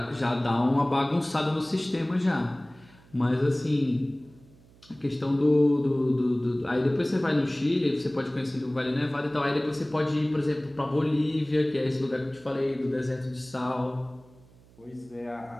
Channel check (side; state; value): right; noise; hum, 27 dB below the sound